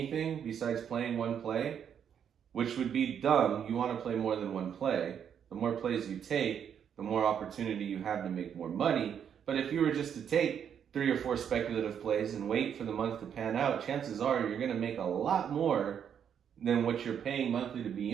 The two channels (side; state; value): left; quieter; 8.3 dB